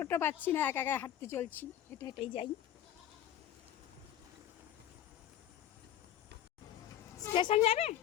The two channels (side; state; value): right; quieter; 11.0 dB